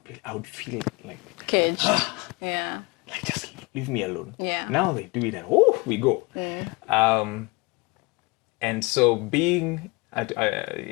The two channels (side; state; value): right; quieter; 26.6 dB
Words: I would feel like caged. Yeah. Like, just leave me alone. Yeah. Now they do it and we go. And so